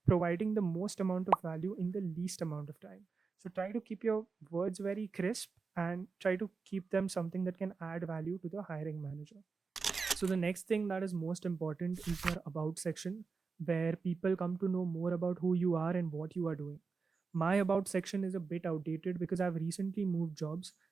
providing the most amount of value in the least amount of time. So try to keep your words very crisp and try to keep them something that can add value to the hiring manager. So the next thing that is most important is your about section, where people come to know more about who you are and what you are doing. My about section is a bit outdated because I've recently moved jobs.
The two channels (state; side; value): quieter; left; 4.7 dB